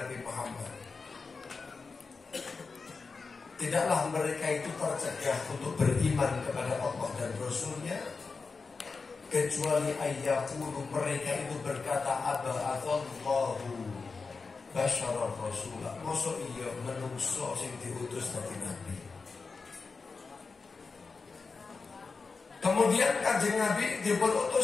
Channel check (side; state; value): right; quieter; 4.5 dB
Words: Muhammad. Tidaklah mereka itu tercegah untuk beriman kepada Allah dan Rasulnya, kecuali ayyaqulu, mereka itu berkata aba'athallahu basyarar rasulah. Masa iya menungso sing diutus dari Nabi. Kemudian Kanjeng Nabi